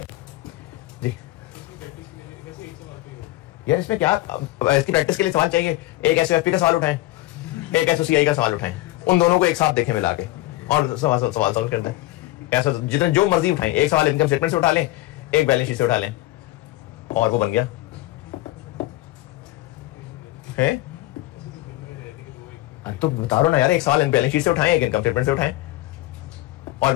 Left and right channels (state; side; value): quieter; right; 17.5 dB